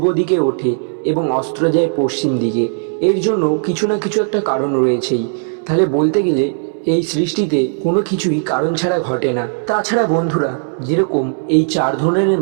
দিকে ওঠে এবং অস্ত যায় পশ্চিম দিকে, এর জন্য কিছু না কিছু একটা কারণ রয়েছেই। তাহলে বলতে গেলে এই সৃষ্টিতে কোনো কিছুই কারণ ছাড়া ঘটে না। তাছাড়া বন্ধুরা, যেরকম এই চার ধরনের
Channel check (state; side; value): silent; left; digital silence